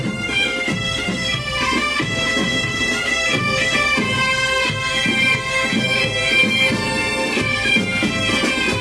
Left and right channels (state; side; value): identical; both; correlation 1.00